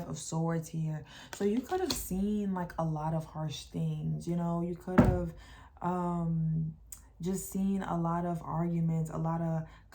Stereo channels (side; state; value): both; identical; correlation 1.00